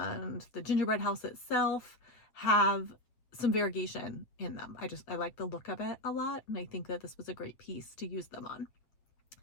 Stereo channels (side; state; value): right; late; 7.9 ms